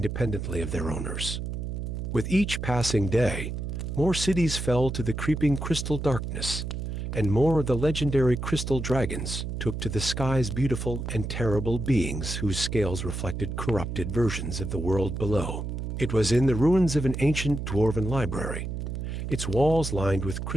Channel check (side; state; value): right; noise; hum, 4 dB below the sound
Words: of their owners. With each passing day, more cities fell to the creeping crystal darkness, and more of the legendary crystal dragons took to the sky's beautiful and terrible beings whose scales reflected corrupted versions of the world below. It was in the ruins of an ancient dwarven library, its walls lined with